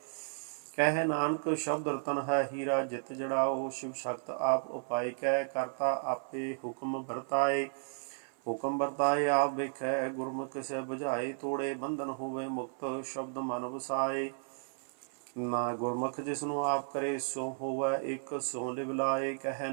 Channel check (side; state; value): left; silent; 55 dB below the other